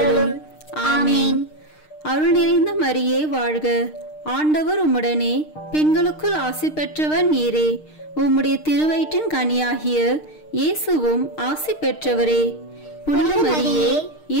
ஆமேன். அருள் நிறைந்த மரியே வாழ்க. ஆண்டவர் உம்முடனே, பெண்களுக்குள் ஆசி பெற்றவர் நீரே. உம்முடைய திருவயிற்றின் கனியாகிய இயேசுவும் ஆசி பெற்றவரே. புனித மரியே,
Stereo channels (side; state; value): right; late; 6.5 ms